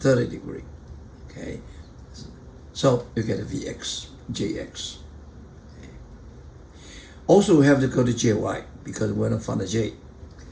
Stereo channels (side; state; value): both; identical; correlation 1.00